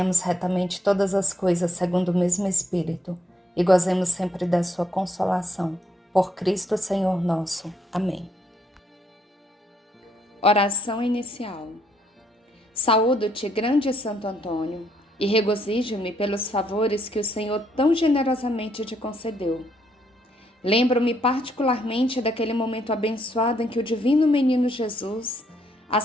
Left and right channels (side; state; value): both; normal; correlation 0.73